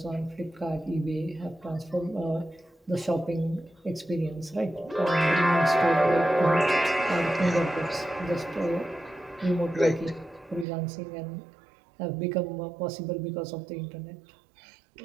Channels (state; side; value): drops out; left; at 10.7 s